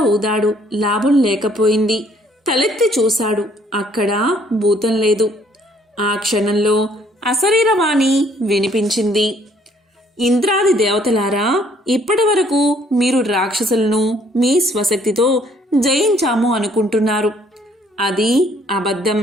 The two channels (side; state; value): both; normal; correlation 0.63